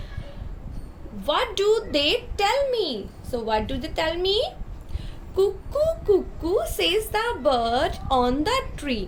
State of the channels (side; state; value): both; identical; correlation 1.00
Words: What do they tell me? So, what do they tell me? Cuckoo, cuckoo, says the bird on the